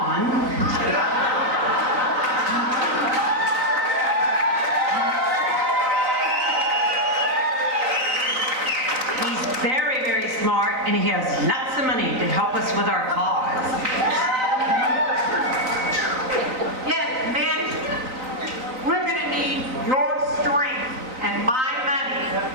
Very, very smart, and he has lots of money to help us with our cause. Yes, men, we're going to need your strength and my money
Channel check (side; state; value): left; late; 3.9 ms